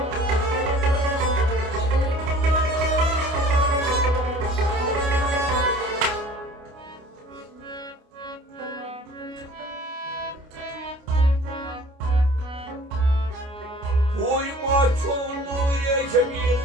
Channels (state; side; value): late; left; 29 ms